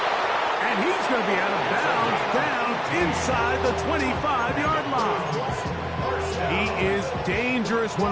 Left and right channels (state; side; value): identical; both; correlation 1.00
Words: And he's going to be out of bounds down inside the 25-yard line. He is dangerous